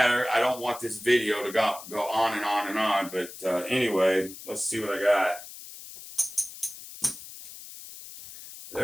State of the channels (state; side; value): noise; left; hiss, 14 dB below the sound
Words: I don't want this video to go on and on and on. But anyway, let's see what I got.